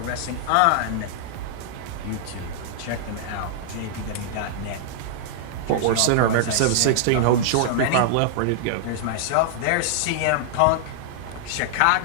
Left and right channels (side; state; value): both; different; correlation -0.01